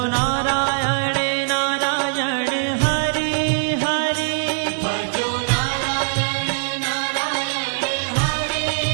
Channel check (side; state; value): left; silent; digital silence